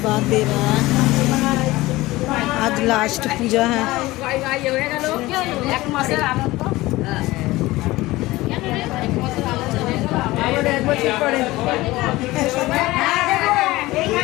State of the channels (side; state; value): right; quieter; 18.9 dB